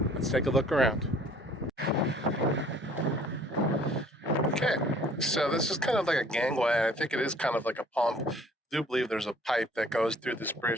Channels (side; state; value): both; normal; correlation 0.55